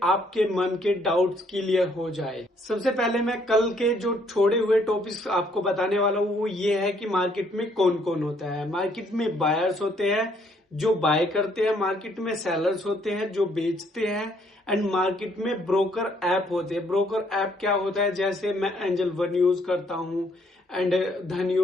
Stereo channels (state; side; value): normal; both; correlation 0.67